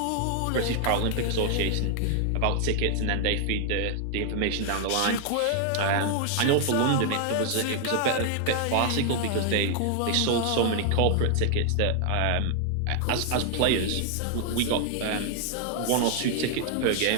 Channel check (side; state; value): both; different; correlation 0.00